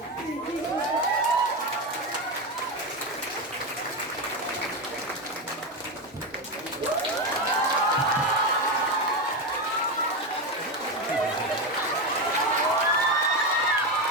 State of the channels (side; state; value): both; normal; correlation 0.13